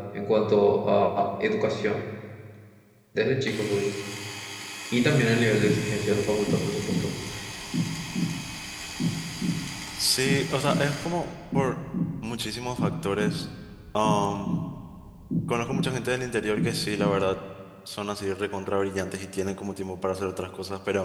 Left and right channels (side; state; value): both; identical; correlation 1.00